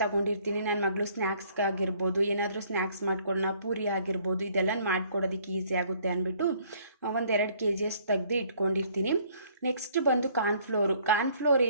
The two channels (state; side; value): inverted; both; correlation -0.61